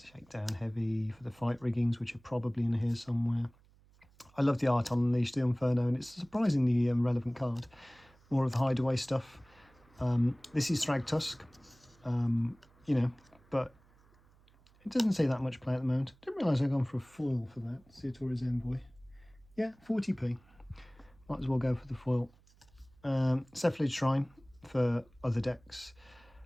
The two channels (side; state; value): right; noise; hum, 29 dB below the sound